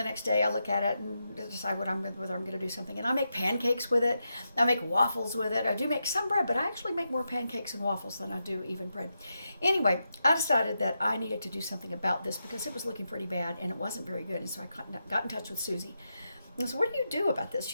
next day I look at it and decide whether I'm going to do something. And I make pancakes with it. I make waffles with it. I do make some bread, but I actually make more pancakes and waffles than I do even bread. Anyway, I decided that I needed to do something about this because it was looking pretty bad and it wasn't very good. And so I got in touch with Susie. And so, what do you do about this?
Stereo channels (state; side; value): inverted; both; correlation -0.87